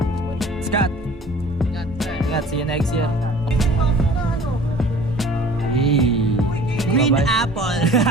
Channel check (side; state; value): both; normal; correlation 0.48